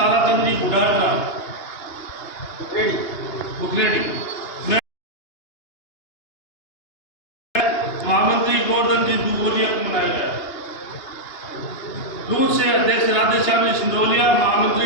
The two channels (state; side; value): late; right; 2.8 ms